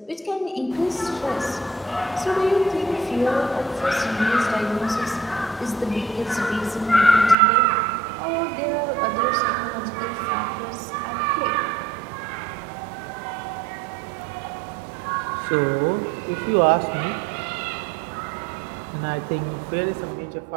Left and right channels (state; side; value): drops out; left; at 7.4 s